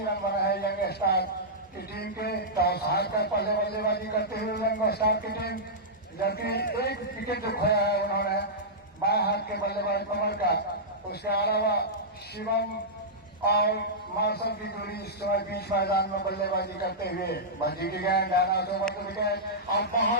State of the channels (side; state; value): both; normal; correlation -0.12